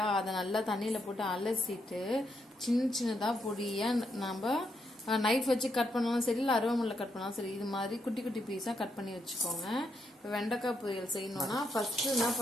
அதை நல்லா தண்ணியில் போட்டு அலசிட்டு சின்ன சின்னதாக பொடியாக நம்ம நைஃப் வச்சு கட் பண்ணாலும் சரி, இல்லை அருவாமனையில் கட் பண்ணாலும் சரி, இது மாதிரி குட்டி குட்டி பீஸாக கட் பண்ணி வச்சுக்கோங்க. இப்போ வெண்டைக்காய் பொரியல் செய்யணும்னா ஃபர்ஸ்ட்டு என்ன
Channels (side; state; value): both; normal; correlation 0.80